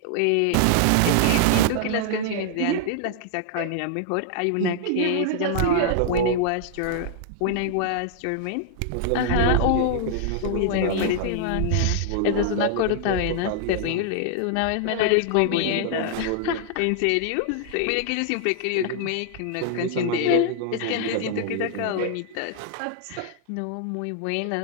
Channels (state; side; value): different; both; correlation -0.01